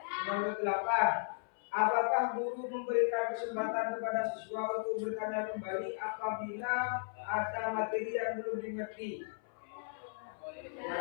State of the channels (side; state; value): right; silent; 54 dB below the other